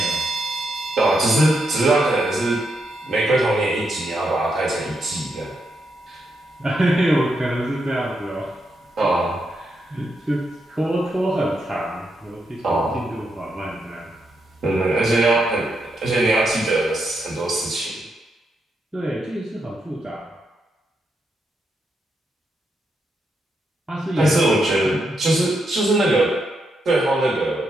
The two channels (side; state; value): both; normal; correlation 0.82